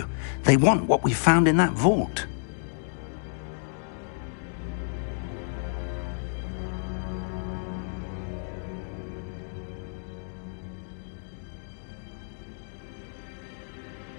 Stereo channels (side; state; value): right; silent; digital silence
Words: they want what we found in that vault.